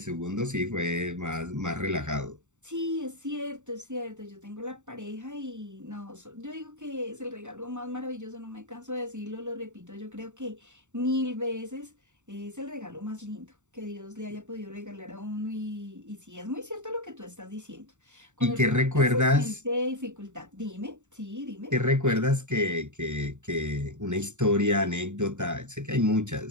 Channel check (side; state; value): left; late; 0.84 ms